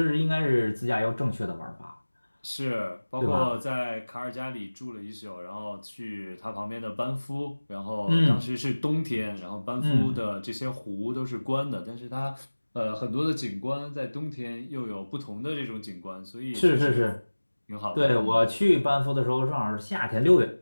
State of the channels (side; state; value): both; inverted; correlation -1.00